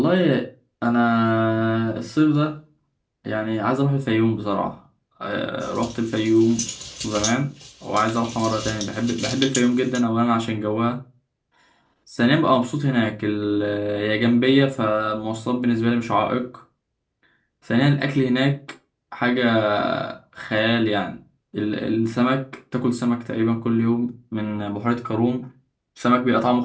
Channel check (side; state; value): both; identical; correlation 1.00